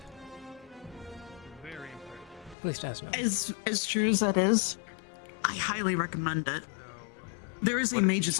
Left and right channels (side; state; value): right; drops out; at 2.6 s